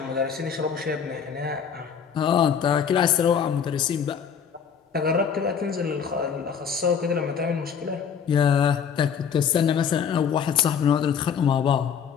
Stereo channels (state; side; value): quieter; right; 7.2 dB